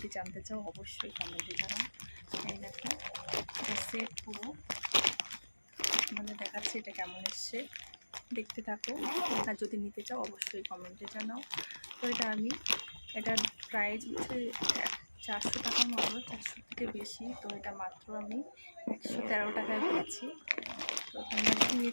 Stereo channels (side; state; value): both; inverted; correlation -1.00